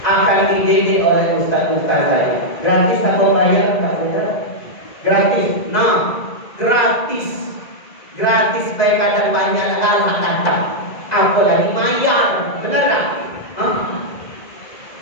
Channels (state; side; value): late; right; 2.0 ms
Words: Akan dididik oleh ustaz-ustaz saya. Gratis atau bayar? Gratis. Nah, gratis. Gratis baik ada banyak hal kata. Apalagi bayar. Benar tak?